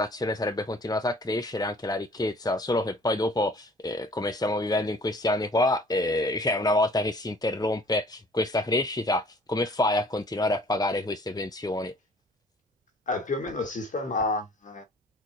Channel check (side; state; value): both; normal; correlation 0.53